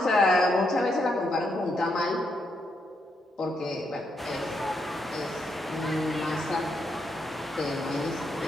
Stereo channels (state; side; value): normal; both; correlation 0.79